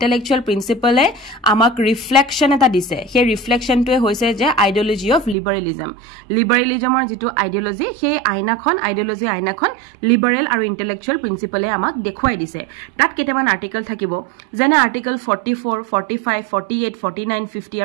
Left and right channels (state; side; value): drops out; left; at 5.4 s